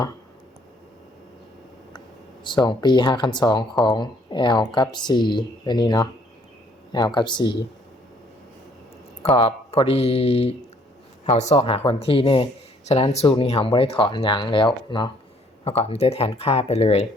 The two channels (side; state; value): both; normal; correlation 0.63